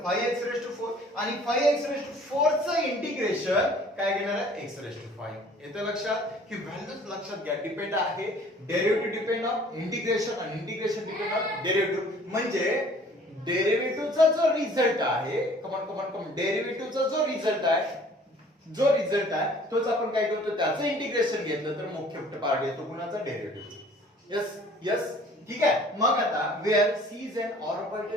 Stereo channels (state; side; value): normal; both; correlation 0.53